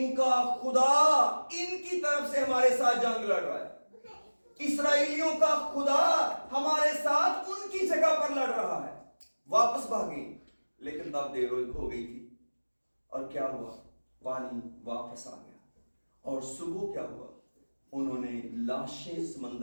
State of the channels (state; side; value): inverted; both; correlation -1.00